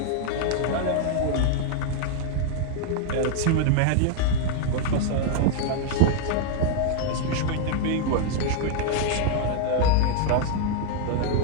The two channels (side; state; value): both; different; correlation 0.00